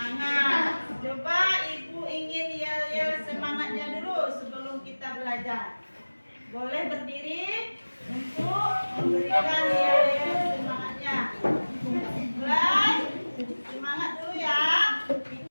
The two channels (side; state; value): both; inverted; correlation -1.00